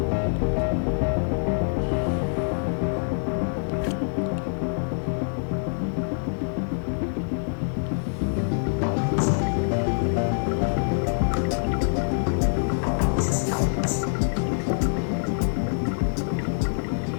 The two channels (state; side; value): silent; right; digital silence